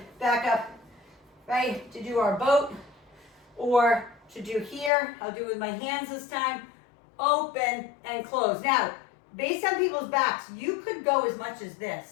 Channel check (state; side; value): drops out; right; at 4.9 s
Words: back up, right, to do our boat, or to do here. I'll do it with my hands this time. Open and close. Now, based on people's backs, you could go as much as